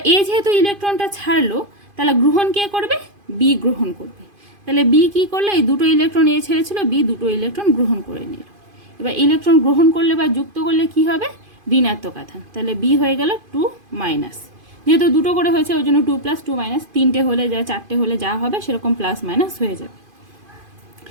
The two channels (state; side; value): late; left; 2.5 ms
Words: এ যেহেতু ইলেকট্রনটা ছাড়লো, তাহলে গ্রহণ কে করবে, বি গ্রহণ করবে। তাহলে বি কি করলো, এই দুটো ইলেকট্রন এ ছেড়েছিল, বি দুটো ইলেকট্রন গ্রহণ করে নিল। এবার ইলেকট্রন গ্রহণ করলে বা যুক্ত করলে কি হবে, ঋণাত্মক আধান। তাহলে বি হয়ে গেল 2-, যেহেতু দুটো করে হয়েছে ওই জন্য 2+, 2-, তিনটে হলে যা, চারটে হলে যা হবে সেরকম +- হয়ে যাবে।